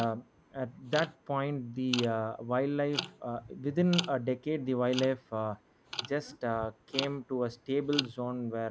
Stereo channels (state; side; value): identical; both; correlation 1.00